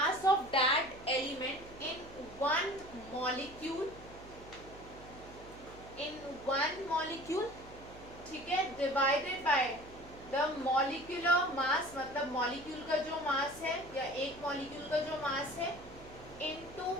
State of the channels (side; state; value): right; noise; hum, 18 dB below the sound